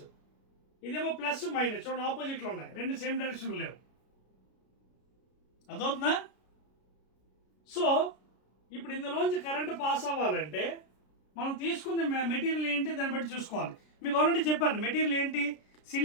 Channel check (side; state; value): right; late; 33 ms